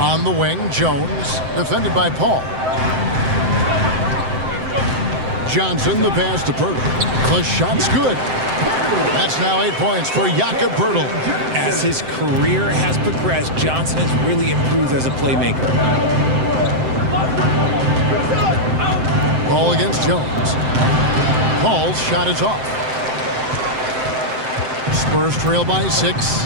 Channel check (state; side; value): late; left; 7.7 ms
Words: the wing, Jones, defended by Paul. Johnson, the pass to Pirtle. The shot's good. That's now 8 points for Jakob Pirtle. As his career has progressed, Johnson has really improved as a playmaker. Ball against Jones. Paul's shot is off. Spurs trail by